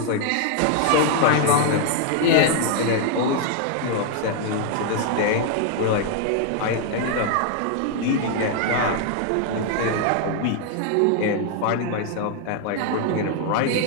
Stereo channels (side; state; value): both; different; correlation 0.00